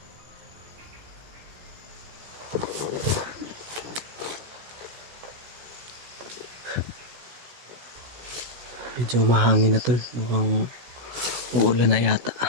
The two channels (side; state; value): left; late; 16 ms